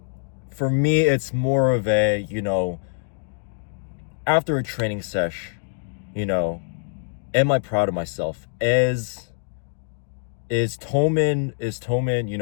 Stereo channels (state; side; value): silent; right; digital silence